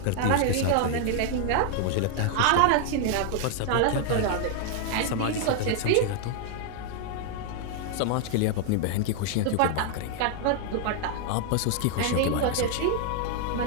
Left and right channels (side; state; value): both; different; correlation 0.00